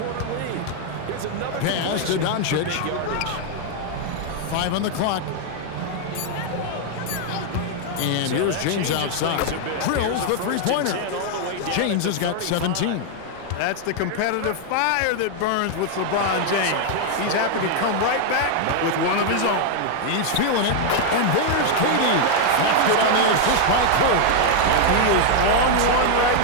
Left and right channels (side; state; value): both; different; correlation 0.00